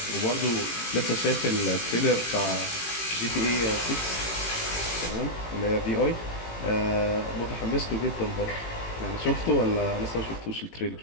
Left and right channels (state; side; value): late; right; 18 ms